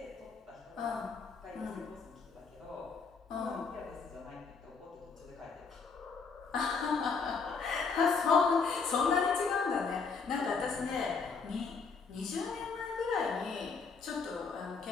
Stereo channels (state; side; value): quieter; right; 5.1 dB